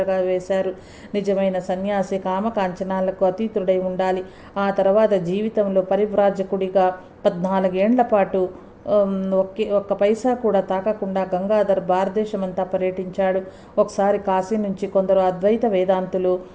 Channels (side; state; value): both; identical; correlation 1.00